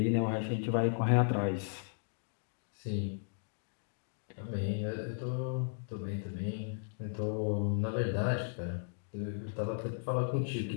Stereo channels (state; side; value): silent; right; digital silence